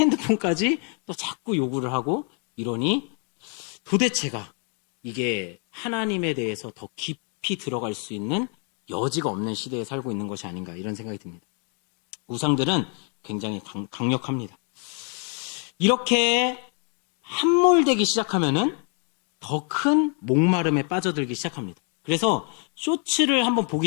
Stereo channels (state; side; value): quieter; right; 39.5 dB